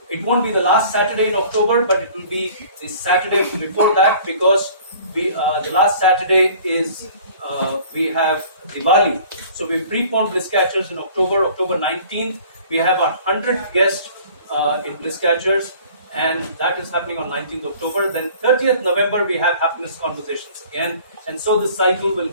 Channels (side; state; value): both; inverted; correlation -0.49